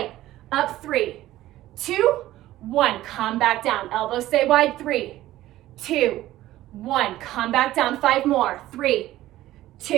Up, 3, 2, 1. Come back down. Elbows stay wide. 3, 2, 1. Come back down. 5 more. 3,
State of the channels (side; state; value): left; quieter; 15.1 dB